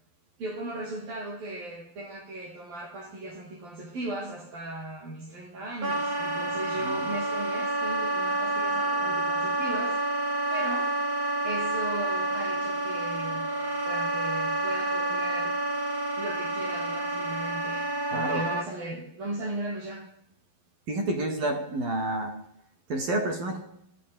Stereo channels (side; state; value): left; late; 12 ms